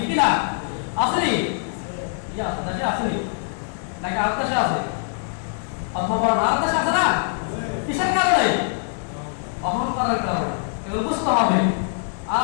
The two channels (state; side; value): silent; right; 57 dB below the other